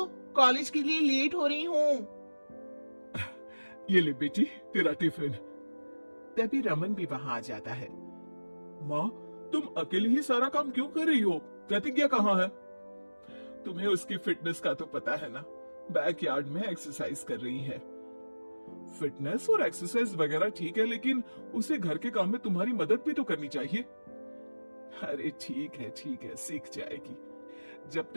कॉलेज के लिए लेट हो रही हूँ। ये ले बेटी तेरा टिफिन। तभी रमन भी वहां आ जाता है। माँ, तुम अकेले ही सारा काम क्यों कर रही हो? प्रतिज्ञा कहाँ है? तुम्हें उसकी फिटनेस का तो पता है ना, बैकयार्ड में एक्सरसाइज कर रही है। फिटनेस और एक्सरसाइज वगैरह ठीक है, लेकिन उसे घर के काम में तुम्हारी मदद भी तो करनी चाहिए। अरे ठीक है, सीख जाएगी। जब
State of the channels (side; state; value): both; inverted; correlation -1.00